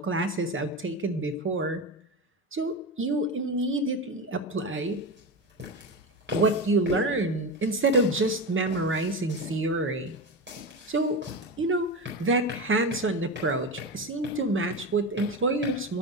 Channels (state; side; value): normal; both; correlation 0.20